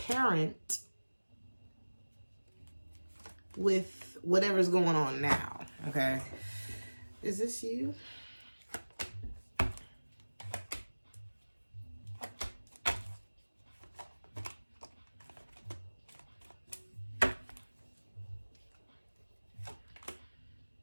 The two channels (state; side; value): inverted; both; correlation -1.00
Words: with whatever's going on now, okay? Is this you?